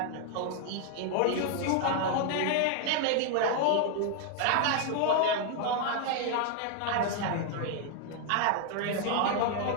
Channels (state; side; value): different; both; correlation 0.00